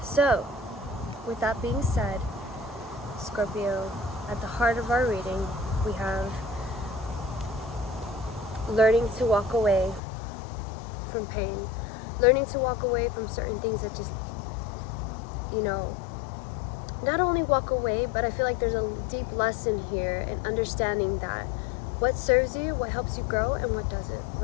so with that being said, Scorpio, at the heart of our reading, we have learning to walk away from pain, learning to walk away from certain things that just you know, not only walk away, but I feel like there's a deep lesson here in understanding that what serves you, what helps you grow, and what doesn't,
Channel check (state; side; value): drops out; right; at 10.0 s